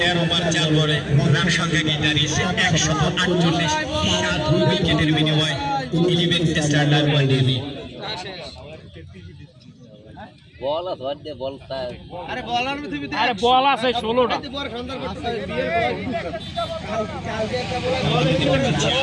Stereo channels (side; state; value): both; identical; correlation 1.00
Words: ওভার 4 বলে রান সংখ্যা গিয়ে দাঁড়িয়েছে 148, 7 উইকেটের বিনিময়ে 11 টেস্টার রান বানিয়ে বল আছে ওয়ার্ডে বল তার আরে বলার পৃথিবীতে আরে বল আছে 16টা বড় সুন্দর করতে বিয়ের পর কালকে একটা বল